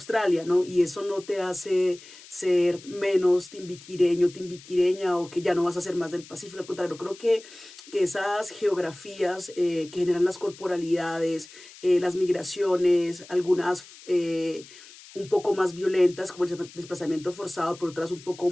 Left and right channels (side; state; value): left; noise; hiss, 20 dB below the sound